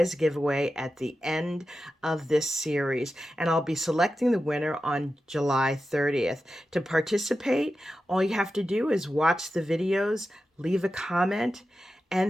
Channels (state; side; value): normal; both; correlation 0.92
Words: giveaway at the end of this series, and I'll be selecting the winner on July 30th. To participate, all you have to do is watch the videos, leave a comment,